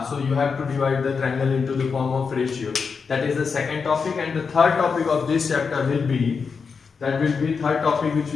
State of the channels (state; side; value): quieter; right; 5.5 dB